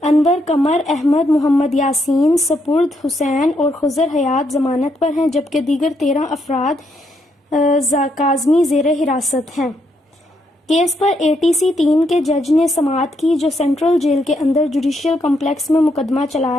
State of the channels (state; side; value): normal; both; correlation 0.77